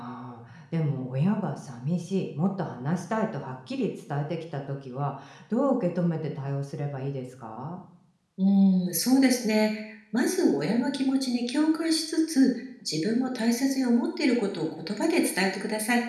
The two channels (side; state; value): both; identical; correlation 1.00